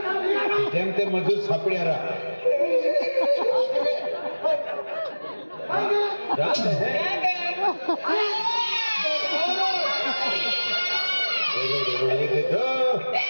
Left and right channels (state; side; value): inverted; both; correlation -1.00